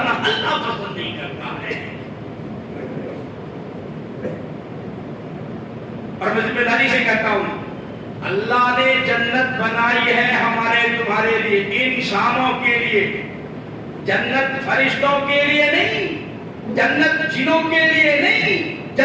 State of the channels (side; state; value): both; identical; correlation 1.00